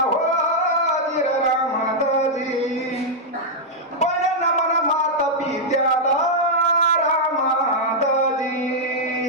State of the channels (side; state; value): both; normal; correlation -0.05